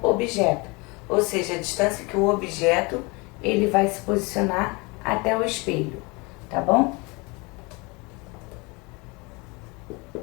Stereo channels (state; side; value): quieter; right; 27.1 dB